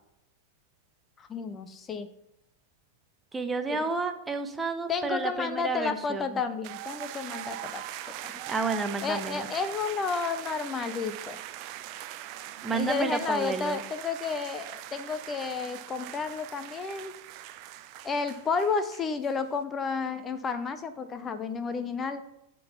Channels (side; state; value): both; normal; correlation 0.46